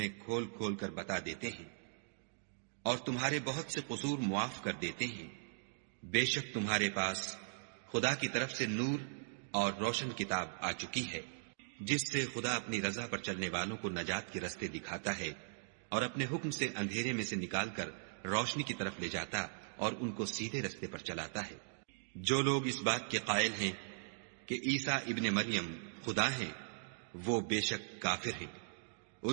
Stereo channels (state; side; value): silent; left; digital silence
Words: کھول کھول کر بتا دیتے ہیں، اور تمہارے بہت سے قصور معاف کر دیتے ہیں۔ بے شک تمہارے پاس خدا کی طرف سے نور اور روشن کتاب آ چکی ہے، جس سے خدا اپنی رضا پر چلنے والوں کو نجات کے رستے دکھاتا ہے اور اپنے حکم سے اندھیرے میں سے نکال کر روشنی کی طرف لے جاتا اور ان کو سیدھے رستے پر چلاتا ہے۔ جو لوگ اس بات کے قائل ہیں کہ عیسیٰ ابن مریم خدا ہیں وہ بے شک کافر ہیں۔